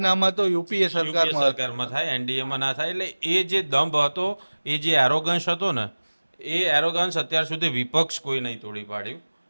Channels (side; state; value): both; inverted; correlation -1.00